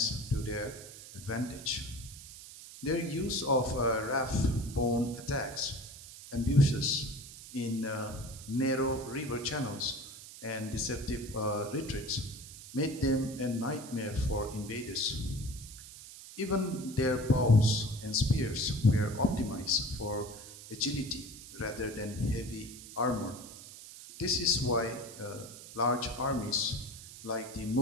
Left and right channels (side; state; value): right; noise; hiss, 15 dB below the sound